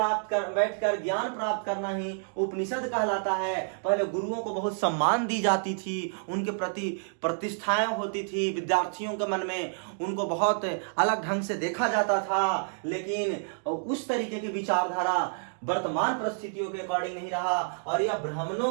करना ही उपनिषद कहलाता है। पहले गुरुओं को बहुत सम्मान दी जाती थी, उनके प्रति प्रतिष्ठाएं होती थी, विद्यार्थियों के मन में उनको बहुत अलग ढंग से देखा जाता था। लेकिन उस तरीके की विचारधारा वर्तमान परिस्थितियों के अकॉर्डिंग नहीं रहा और यह ब्राह्मणों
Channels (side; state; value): left; silent; digital silence